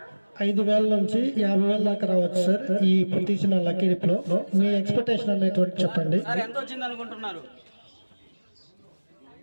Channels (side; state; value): both; inverted; correlation -1.00